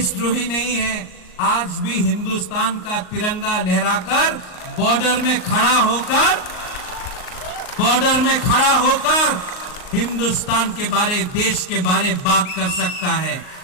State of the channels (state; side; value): late; right; 38 ms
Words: नहीं है, आज भी हिंदुस्तान का तिरंगा लहराकर बॉर्डर में खड़ा होकर हिंदुस्तान के बारे, देश के बारे बात कर सकता है।